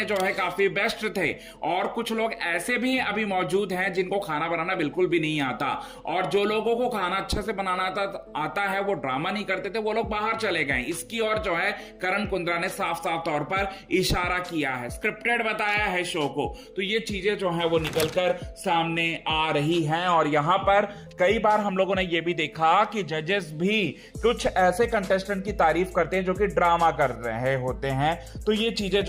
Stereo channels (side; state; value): both; identical; correlation 1.00